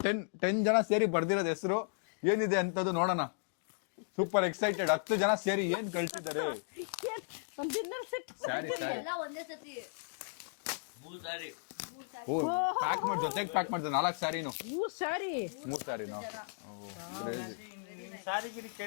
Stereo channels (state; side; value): silent; right; digital silence